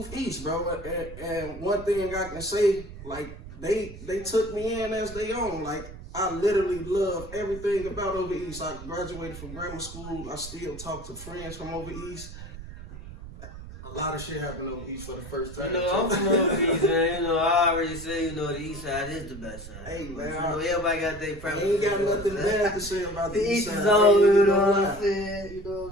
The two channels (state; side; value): noise; right; rumble, 13 dB below the sound